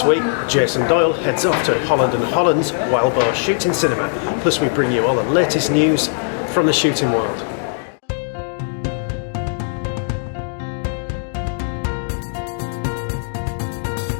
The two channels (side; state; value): right; silent; digital silence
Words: week, Jason Doyle heads off to Holland Holland's Wild Boar Shooting Cinema. Plus we bring you all the latest news from the shooting world.